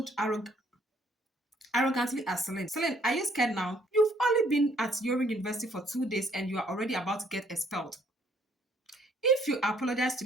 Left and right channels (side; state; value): both; normal; correlation 0.64